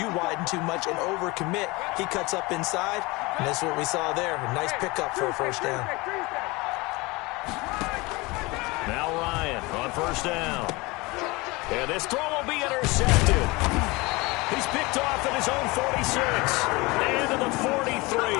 widen too much and overcommit. He cuts up inside, and that's what we saw there. A nice pickup for a first down. Now Ryan on first down. And this throw will be intercepted. He's picked off at his own 46 and to the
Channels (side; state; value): right; quieter; 23.9 dB